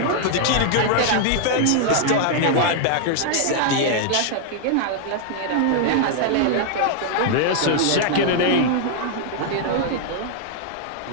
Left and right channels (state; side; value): different; both; correlation 0.00